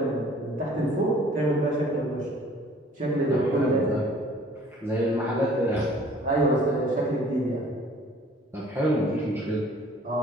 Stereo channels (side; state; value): both; normal; correlation 0.53